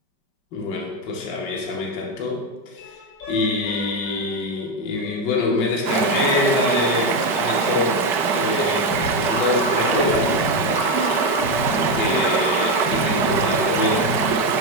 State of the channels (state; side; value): late; right; 4.6 ms